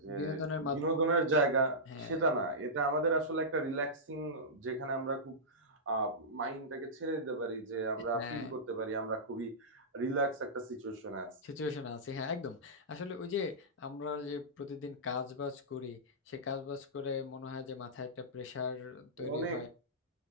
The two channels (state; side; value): normal; both; correlation -0.15